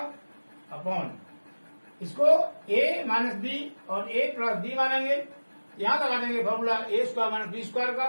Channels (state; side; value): inverted; both; correlation -1.00